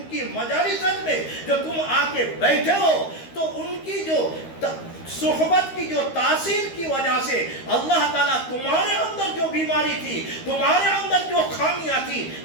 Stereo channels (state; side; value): late; right; 13 ms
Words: मजालिसत में जो तुम आके बैठे हो, तो उनकी जो सोहबत की जो तासीर की वजह से अल्लाह ताला तुम्हारे अंदर जो बीमारी थी, तुम्हारे अंदर जो खामियां थी,